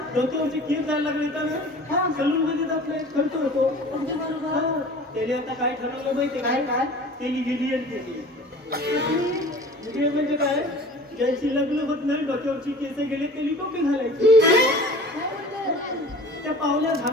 डोक्यावरचे केस जायला लागले तर ना हा. सलून मध्ये आपले खर्च होतो अगदी बरोबर. त्याने आता काय ठरवलं माहिती काय काय? त्याने गेली आणि केली म्हणजे काय ज्यांची लग्न होत नाही डोक्यावरची केस गेले त्यांनी टोपी घालायची काय म्हणते? त्या पावल्या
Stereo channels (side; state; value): both; normal; correlation 0.43